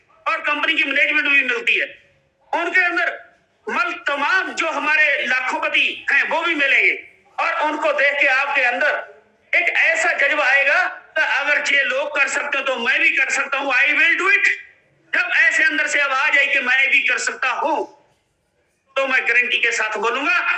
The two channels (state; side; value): identical; both; correlation 1.00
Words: और कंपनी की मैनेजमेंट भी मिलती है। उनके अंदर तमाम जो हमारे लाखोपति हैं वो भी मिलेंगे, और उनको देख के आपके अंदर एक ऐसा जज्बा आएगा कि अगर ये लोग कर सकते हो तो मैं भी कर सकता हूं, आई विल डू इट। जब ऐसे अंदर से आवाज आई कि मैं भी कर सकता हूं, तो मैं गारंटी के साथ बोलूंगा